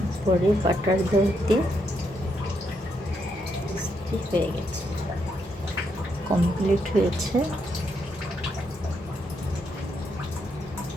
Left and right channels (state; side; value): normal; both; correlation 0.78